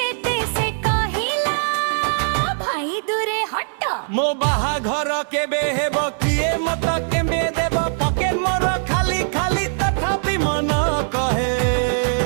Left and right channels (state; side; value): silent; left; 65 dB below the other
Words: से कहिला भाई दूरे हट मो बाहाघर केबे हेबो किए मत केबे देबो पकेट मोर खाली खाली तथापि मन कहे